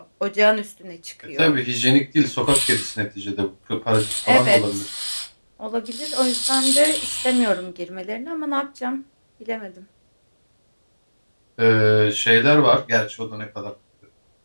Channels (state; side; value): inverted; both; correlation -1.00